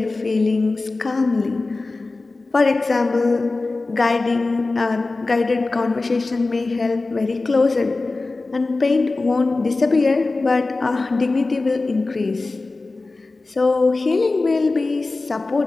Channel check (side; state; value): right; quieter; 3.4 dB